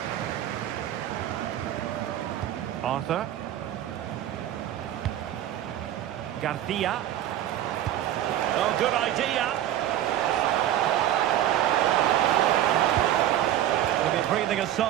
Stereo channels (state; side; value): quieter; left; 12.1 dB